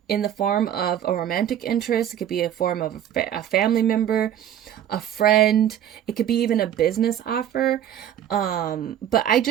in the form of a romantic interest. It could be a form of a family member, a friend. It could be even a business offer. But I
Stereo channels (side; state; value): left; quieter; 10.5 dB